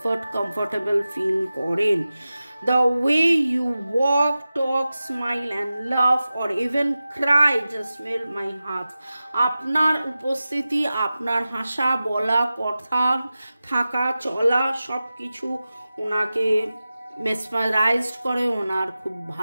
কমফর্টেবল ফিল করেন। The way you walk, talk, smile and laugh or even cry just melt my heart. আপনার উপস্থিতি, আপনার হাসা, বলা, কথা, থাকা, চলা সব কিছু ওনাকে মেসমারাইজড করে, ওনার খুব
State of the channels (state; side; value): inverted; both; correlation -0.94